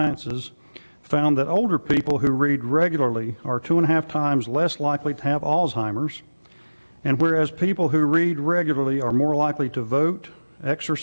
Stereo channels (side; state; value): both; inverted; correlation -1.00